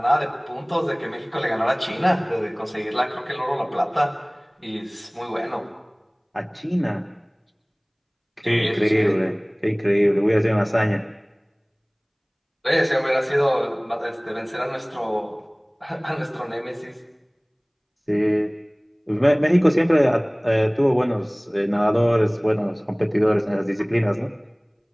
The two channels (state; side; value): identical; both; correlation 1.00